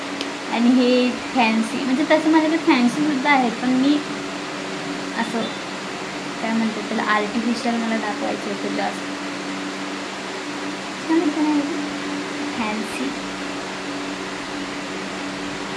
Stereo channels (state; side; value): identical; both; correlation 1.00